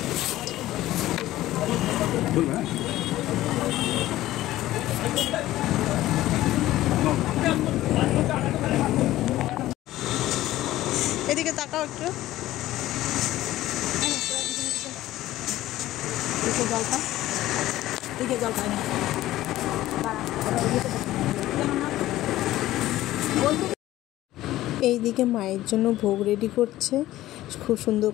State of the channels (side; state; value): right; quieter; 15.3 dB